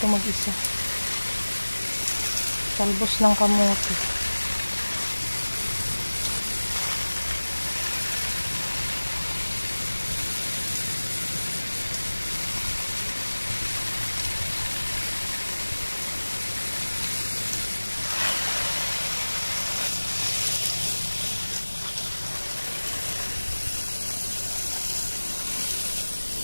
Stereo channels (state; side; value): inverted; both; correlation -1.00